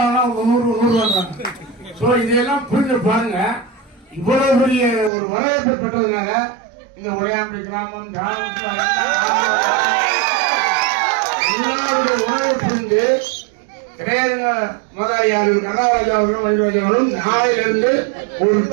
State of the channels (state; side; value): drops out; left; at 5.1 s